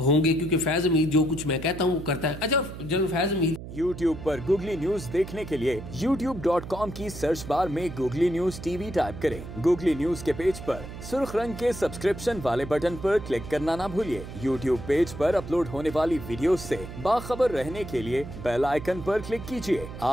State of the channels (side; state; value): right; noise; hum, 11 dB below the sound